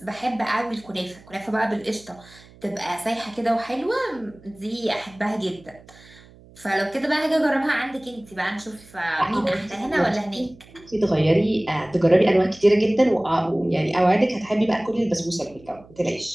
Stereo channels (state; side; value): noise; right; hum, 24 dB below the sound